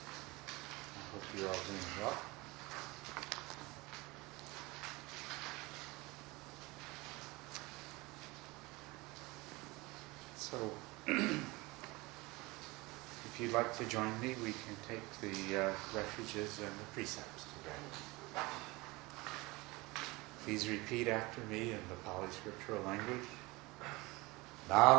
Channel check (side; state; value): left; quieter; 23.0 dB